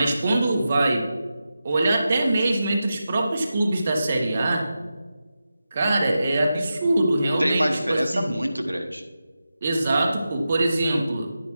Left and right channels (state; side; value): inverted; both; correlation -0.91